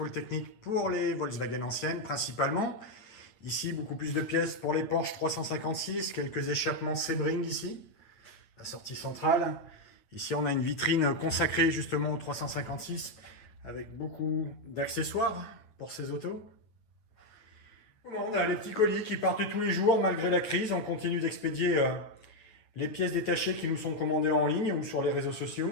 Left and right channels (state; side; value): late; right; 9.2 ms